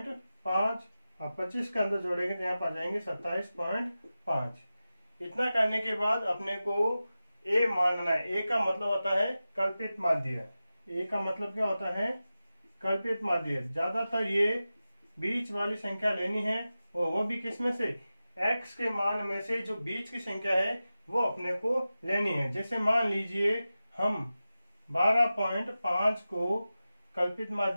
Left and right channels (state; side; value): inverted; both; correlation -0.94